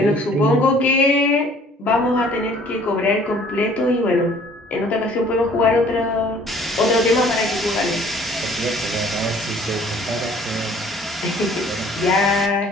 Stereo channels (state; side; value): normal; both; correlation 0.55